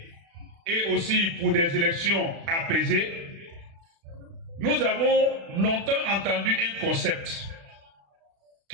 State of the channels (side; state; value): left; late; 36 ms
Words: et aussi pour des élections apaisées, nous avons longtemps entendu un concept